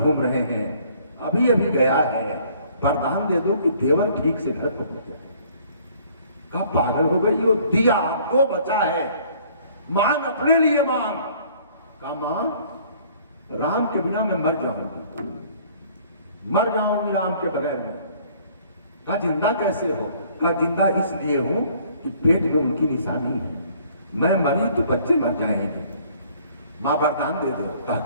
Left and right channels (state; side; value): inverted; both; correlation -0.57